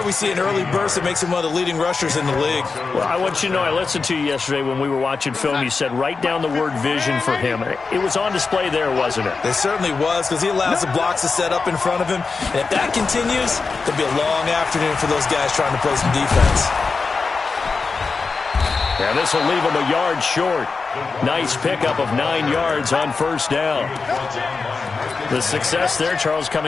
we see an early burst that makes him one of the leading rushers in the league. Well, I want you to know, I listened to you yesterday when we were watching film. You said write down the word vision for him. It was on display there, wasn't it? It certainly was, because he allows the blocks to set up in front of him. And if that continues, it'll be a long afternoon for those guys trying to play some defense. And this will leave him a yard short. Nice pickup of 9 yards on first down. The success there, Charles,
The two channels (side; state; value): right; quieter; 4.5 dB